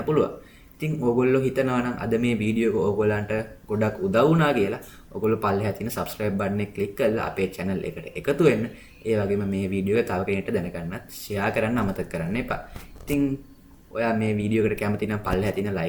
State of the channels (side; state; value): both; identical; correlation 1.00